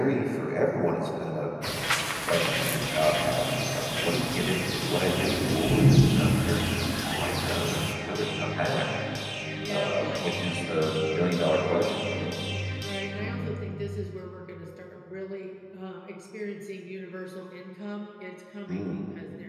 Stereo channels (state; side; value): identical; both; correlation 1.00